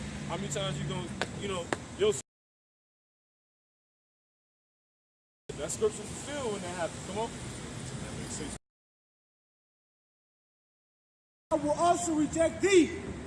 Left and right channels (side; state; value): both; identical; correlation 1.00